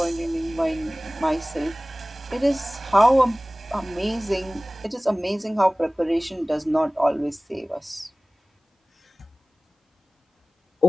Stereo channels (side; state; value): both; normal; correlation 0.98